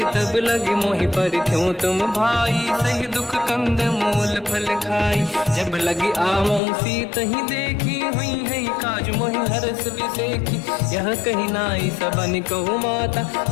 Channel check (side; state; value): right; drops out; at 6.6 s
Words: तब लगे मोहि पर क्यों तुम भाई सही दुख कंद मूल फल खाई जब लगी आवों सीत ही देखी हुई है काज मोहि हरस बिसेखी यह कही नाई सबन कहु माता